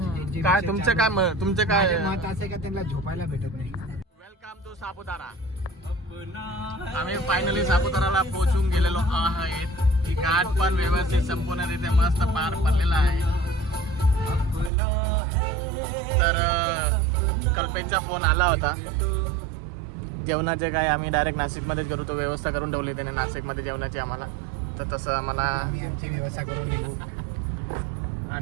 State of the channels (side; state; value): left; drops out; at 14.7 s